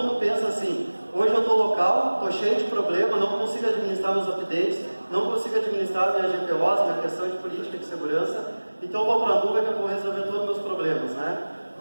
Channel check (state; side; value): inverted; both; correlation -1.00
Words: pensa assim, hoje eu estou local, estou cheio de problema, não consigo administrar meus updates, não consigo administrar minha GPOs, minha questão de política de segurança, então eu vou para a nuvem que eu vou resolver todos os meus problemas, né?